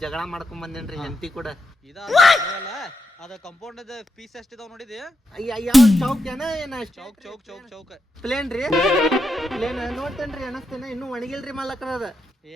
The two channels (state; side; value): normal; both; correlation 0.85